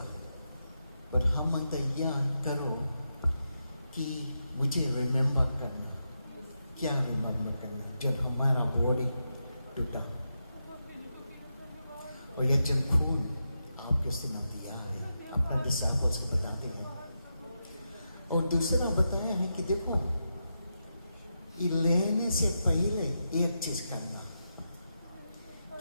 पर हम तैयार करो कि मुझे रिमेंबर करना। क्या रिमेंबर करना? जब हमारा बॉडी टूटा और यह जब खून आपके सीने दिया है, अपने डिसाइपल्स को बताते हैं। और दूसरा बताया है कि देखो ये लेने से पहले एक चीज करना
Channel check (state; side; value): inverted; both; correlation -0.87